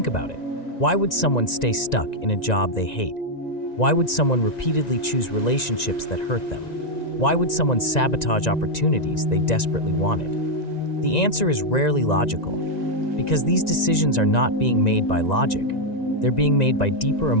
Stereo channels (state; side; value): late; right; 1.9 ms